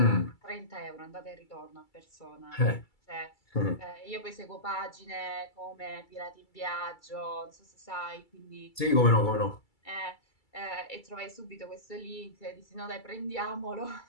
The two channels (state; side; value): late; right; 2.3 ms